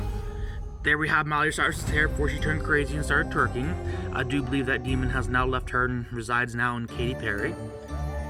There we have Miley Cyrus's hair before she turned crazy and started twerking. I do believe that demon has now left her and resides now in Katy Perry.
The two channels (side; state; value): both; identical; correlation 1.00